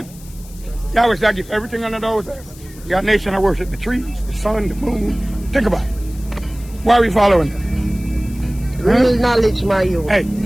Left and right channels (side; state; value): left; noise; hiss, 21 dB below the sound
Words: Yahweh said, I give everything under those heavens. You got a nation that worship the trees, the sun, the moon. Think about it. Why are we following them? Real knowledge, my youth. Hey,